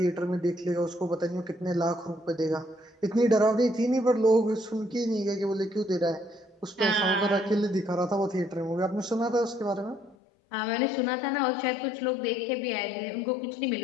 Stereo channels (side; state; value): right; drops out; at 10.2 s